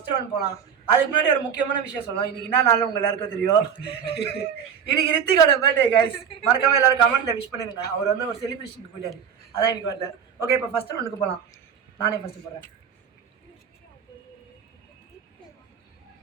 ரவுண்ட் போகலாம். அதுக்கு முன்னாடி ஒரு முக்கியமான விஷயம் சொல்லலாம். இன்னைக்கு என்ன நாளும் உங்க எல்லாருக்கும் தெரியும். இன்னைக்கு ரித்திகோட பர்த்டே கைஸ். மறக்காம எல்லாரும் கமெண்ட்ல விஷ் பண்ணிருங்க. அவர் வந்து ஒரு செலிப்ரேஷனுக்கு போயிட்டாரு, அதான் இன்னைக்கு வரல. ஓகே, இப்போ ஃபர்ஸ்ட் ரவுண்டுக்கு போகலாம். நானே ஃபர்ஸ்ட் போடுறேன்.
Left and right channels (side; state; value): left; quieter; 7.5 dB